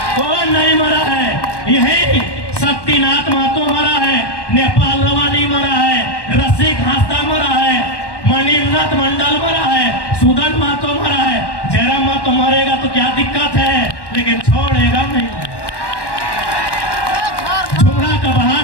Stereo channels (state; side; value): late; right; 1.1 ms